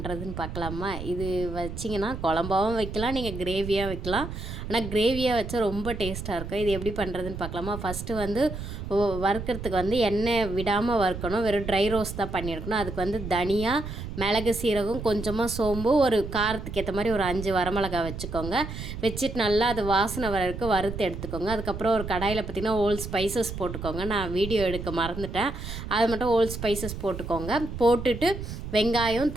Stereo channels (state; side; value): noise; right; rumble, 8 dB below the sound